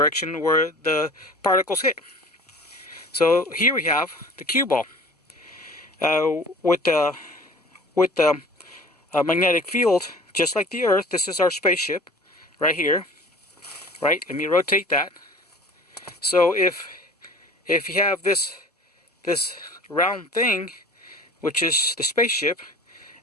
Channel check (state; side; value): normal; both; correlation 0.43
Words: where the particles hit. So here we have the cue ball with the magnetic field, just like the Earth. This is our spaceship right here. Right? Let me rotate that. So if you have this round thing, which is the spaceship,